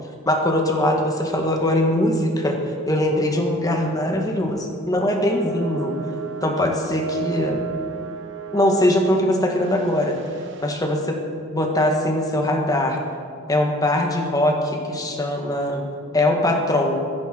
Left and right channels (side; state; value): both; normal; correlation 0.52